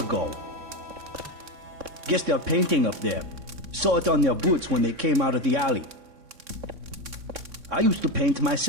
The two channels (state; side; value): late; left; 3.6 ms